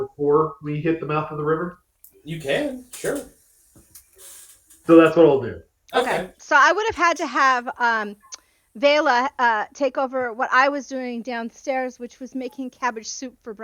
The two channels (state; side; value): identical; both; correlation 1.00